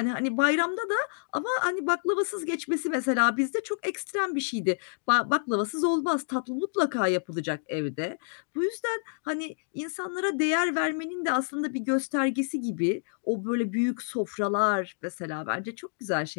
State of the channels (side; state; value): right; silent; digital silence